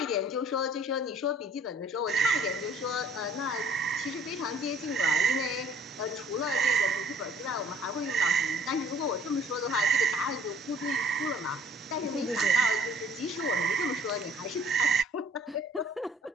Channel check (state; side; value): normal; both; correlation 0.56